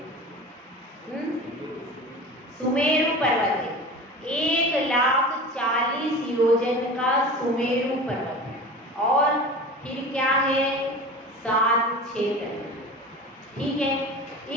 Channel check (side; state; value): both; normal; correlation 0.34